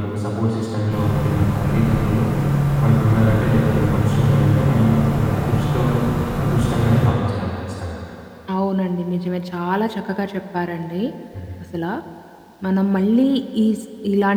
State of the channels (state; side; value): identical; both; correlation 1.00